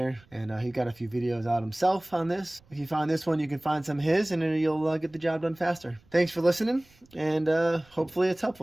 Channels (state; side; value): noise; right; rumble, 30 dB below the sound